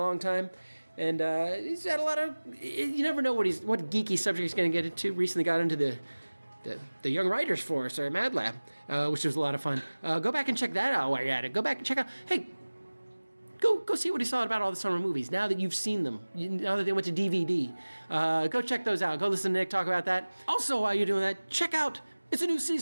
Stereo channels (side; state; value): both; inverted; correlation -1.00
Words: time. And he's had a lot of... You never know what geeky subject he's going to get into. Recently got into the Young Writers Force, or Mad Lab, which was a lot of fun. Go back and check that out while you're at it. Go back and check out... Hey, go see what he saw about all the summer movies, now that you've seen them, now that they went to DVD. Go check those out. Go listen to Nick talk about that. Also, while you're doing that, check out... It's a new